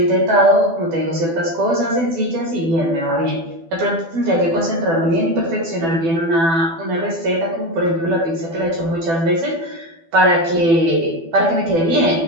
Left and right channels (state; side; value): late; left; 12 ms